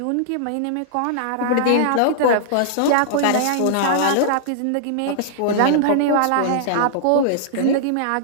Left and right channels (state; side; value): different; both; correlation -0.01